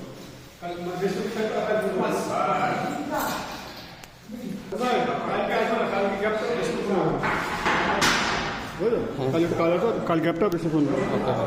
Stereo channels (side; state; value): both; identical; correlation 1.00